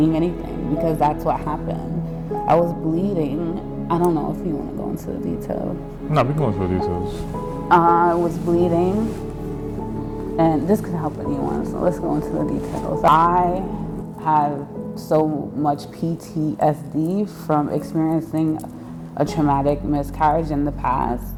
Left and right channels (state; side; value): identical; both; correlation 1.00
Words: anything, because that's what happened. I was bleeding. I don't know if you want to go into the details. No, we go into the details. I was bleeding, and this could help anyone, so let's go into the details. I have so much PTSD from experiencing a traumatic miscarriage in the past